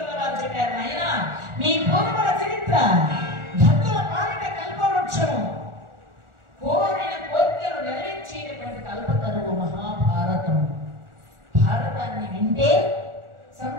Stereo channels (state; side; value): late; left; 1.4 ms